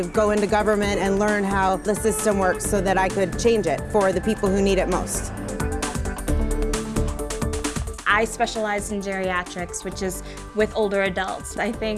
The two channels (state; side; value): identical; both; correlation 1.00